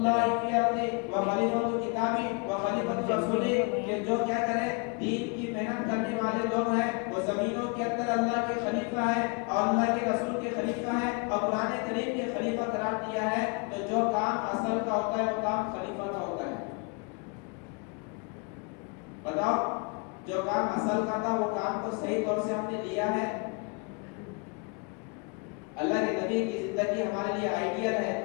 فی الارض وخلیفۃ کتابہ وخلیفۃ رسولہ، کہ جو کیا کرے دین کی محنت کرنے والے لوگ ہیں وہ زمینوں کے اندر اللہ کے خلیفہ ہیں اور اللہ کے رسول کے خلیفہ ہیں اور قرآن کریم کے خلیفہ قرار دیا ہے۔ تو جو کام اصل کا ہوتا ہے وہ کام خلیفہ کا ہوتا ہے۔ بتاؤ جو کام اصل کا تھا وہ کام کو صحیح طور سے ہم نے لیا ہے؟ اللہ کے نبی کی زندگی ہمارے لیے آئیڈیل ہے،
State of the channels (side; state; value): right; quieter; 34.3 dB